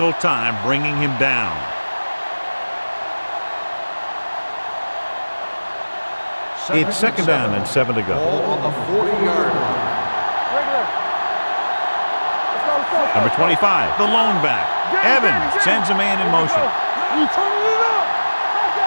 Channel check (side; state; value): both; inverted; correlation -1.00